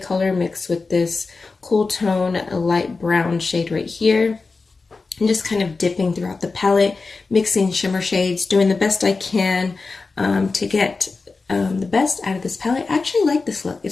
mixed with this cool tone, a light brown shade right here. I'm just kind of dipping throughout the palette, mixing shimmer shades, doing the best I can to get the best out of this palette. I actually like this look.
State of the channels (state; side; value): quieter; right; 4.0 dB